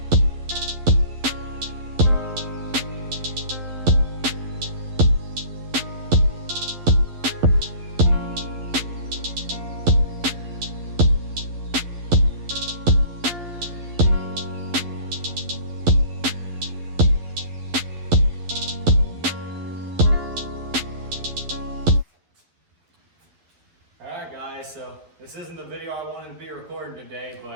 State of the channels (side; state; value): left; late; 11 ms